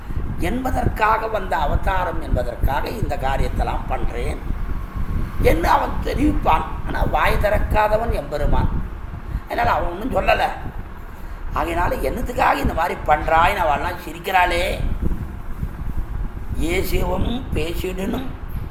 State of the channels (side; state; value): both; identical; correlation 1.00